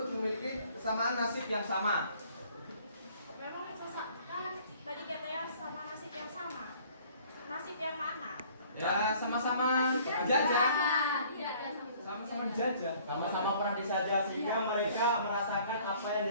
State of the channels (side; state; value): both; inverted; correlation -0.56